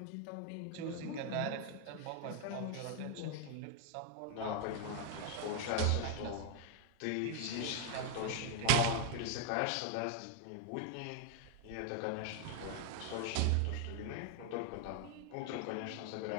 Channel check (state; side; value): different; both; correlation 0.00